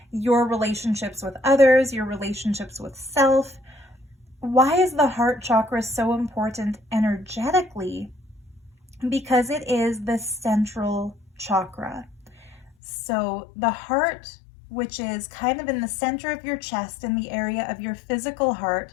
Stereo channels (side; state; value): right; drops out; at 12.7 s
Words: your relationships with others, your relationships with self. Why is the heart chakra so important energetically? Because it is the central chakra. So the heart, which is kind of in the center of your chest, in the area of your physical heart,